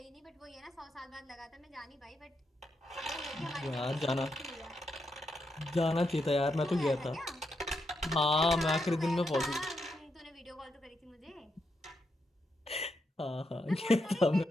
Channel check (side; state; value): both; normal; correlation 0.82